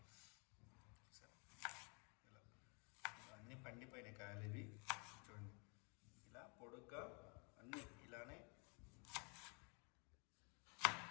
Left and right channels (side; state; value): right; quieter; 34.5 dB